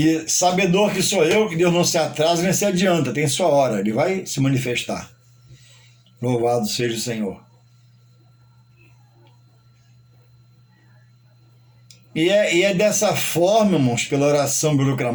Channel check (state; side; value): identical; both; correlation 1.00